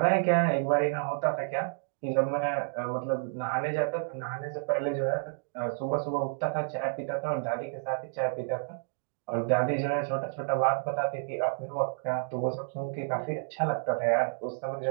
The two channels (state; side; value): silent; left; digital silence